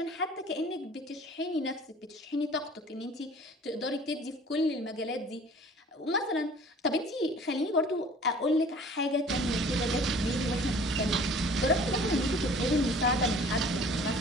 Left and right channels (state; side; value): normal; both; correlation 0.49